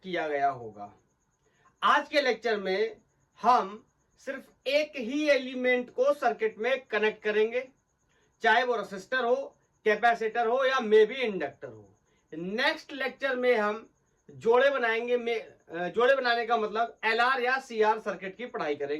गया होगा। आज के लेक्चर में हम सिर्फ एक ही एलिमेंट को सर्किट में कनेक्ट करेंगे, चाहे वो रेसिस्टर हो, कैपेसिटर हो या मे बी इंडक्टर हो। नेक्स्ट लेक्चर में हम जोड़े बनाएंगे। जोड़े बनाने का मतलब एलआर या सीआर सर्किट की पढ़ाई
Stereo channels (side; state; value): both; identical; correlation 1.00